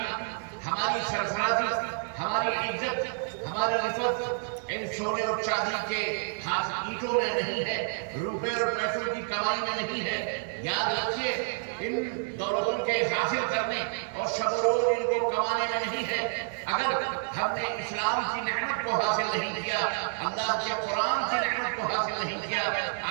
ہماری سرفرازی، ہماری عزت، ہماری رفعت ان سونے اور چاندی کے اینٹوں میں نہیں ہے، روپے اور پیسوں کی کمائی میں نہیں ہے۔ یاد رکھیے، ان دولتوں کے حاصل کرنے اور شب و روز ان کو کمانے میں نہیں ہے۔ اگر ہم نے اسلام کی نعمت کو حاصل نہیں کیا، اللہ کے قرآن کی نعمت کو حاصل نہیں کیا،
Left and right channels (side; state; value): left; silent; digital silence